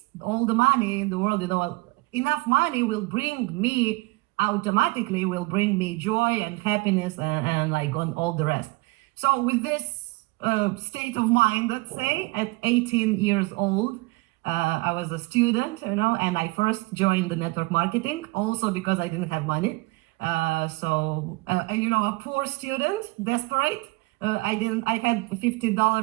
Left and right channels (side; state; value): left; quieter; 24.4 dB